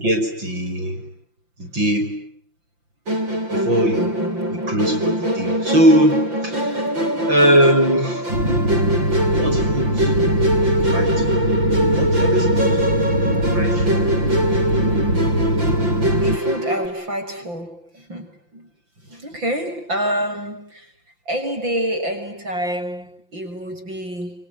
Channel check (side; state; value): left; late; 5.8 ms